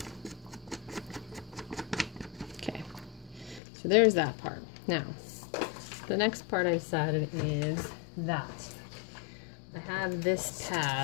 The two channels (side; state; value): right; drops out; at 3.6 s